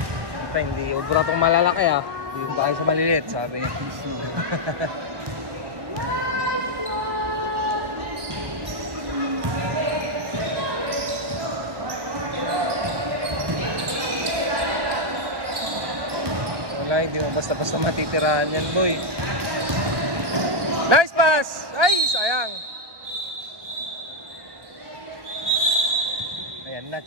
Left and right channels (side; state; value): left; late; 1.1 ms